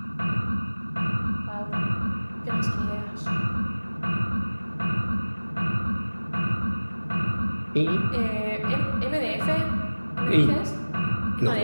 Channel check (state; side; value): inverted; both; correlation -1.00